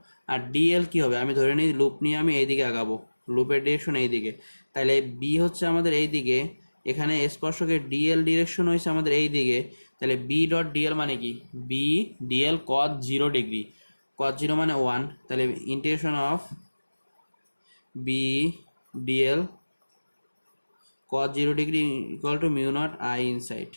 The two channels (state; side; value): inverted; both; correlation -1.00